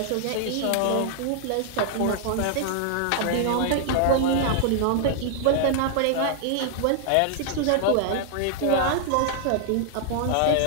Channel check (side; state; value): both; different; correlation 0.00